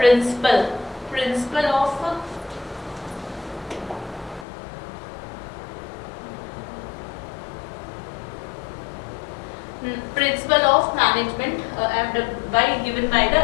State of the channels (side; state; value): right; drops out; at 4.5 s